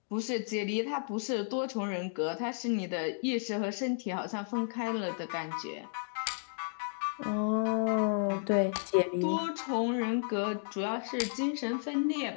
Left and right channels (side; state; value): right; silent; digital silence